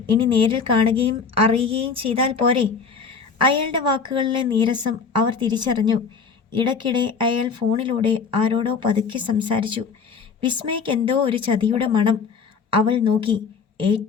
ഇനി നേരിൽ കാണുകയും അറിയുകയും ചെയ്താൽ പോരെ? അയാളുടെ വാക്കുകളിലെ നീരസം അവർ തിരിച്ചറിഞ്ഞു. ഇടയ്ക്കിടെ അയാൾ ഫോണിലൂടെ ആരോടോ പതുക്കെ സംസാരിച്ചു. വിസ്മയ്ക്ക് എന്തോ ഒരു ചതിയുടെ മണം. അവൾ നോക്കി.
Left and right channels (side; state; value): right; quieter; 5.5 dB